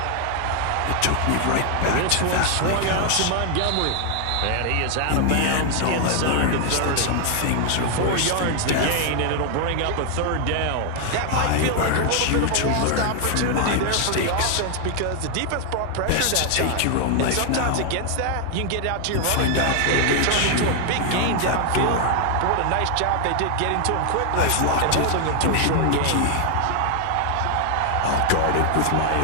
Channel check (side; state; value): both; different; correlation 0.00